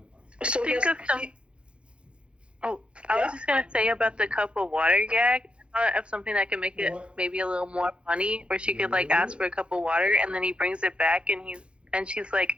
So I was just gonna say about the cup of water gag. Of something that can make it maybe a little more funny, where she could like ask for a cup of water, and then he brings it back, and she's like,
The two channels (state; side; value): late; left; 0.058 ms